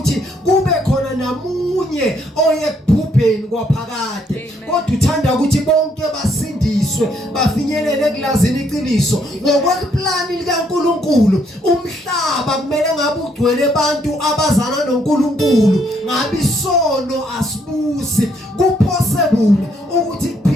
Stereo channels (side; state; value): both; normal; correlation 0.71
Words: kube khona namunye oyekubhubheni kwaphakade kodwa uthanda ukuthi bonke basindiswe bafinyelele ekulazini iqiniso ngokweplani likaNkulunkulu. Umhlaba kumele ngabe ugcwele abantu abazana noNkulunkulu ngabe isono asibusi. Possible ukuthi